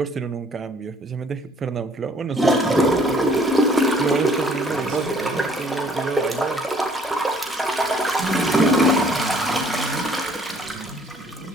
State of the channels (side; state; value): both; normal; correlation 0.59